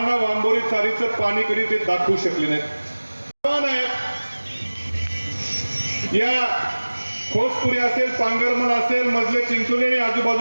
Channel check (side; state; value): both; inverted; correlation -1.00